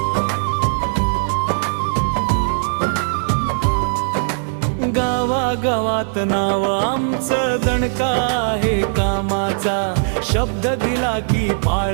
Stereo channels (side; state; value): left; silent; 60 dB below the other